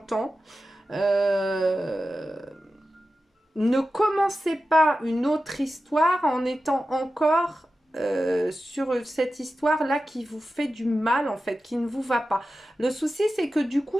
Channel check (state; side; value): normal; both; correlation 0.93